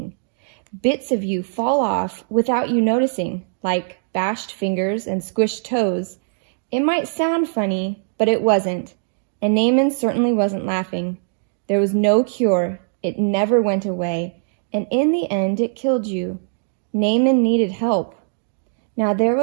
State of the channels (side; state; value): left; silent; digital silence